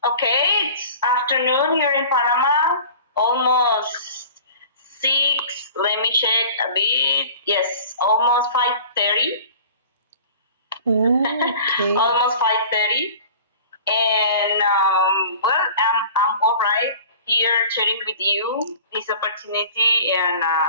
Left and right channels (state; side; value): inverted; both; correlation -0.42